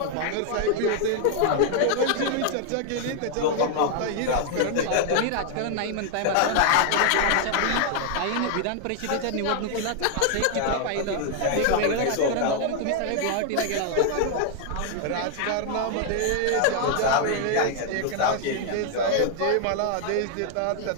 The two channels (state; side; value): different; both; correlation 0.00